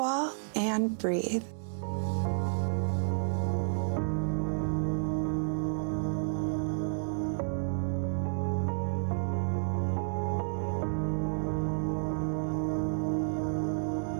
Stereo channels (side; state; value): left; silent; digital silence